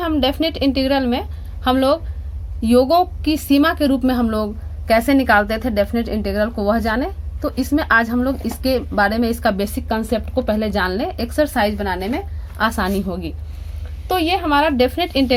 डेफिनेट इंटीग्रल में हम लोग योगों की सीमा के रूप में हम लोग कैसे निकालते थे डेफिनेट इंटीग्रल को, वह जाने। तो इसमें आज हम लोग इसके बारे में, इसका बेसिक कंसेप्ट को पहले जान लें, एक्सरसाइज बनाने में आसानी होगी। तो ये हमारा डेफिनेट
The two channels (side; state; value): both; identical; correlation 1.00